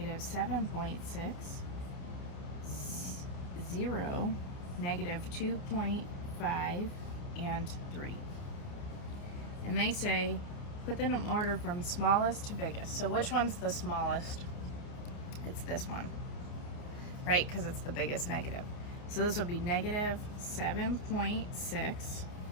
0, -2.5, and 3. And they say put them in order from smallest to biggest. So which one's the smallest? It's this one, right? Because it's the biggest negative. So this would be -7.6.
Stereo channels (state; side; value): late; right; 29 ms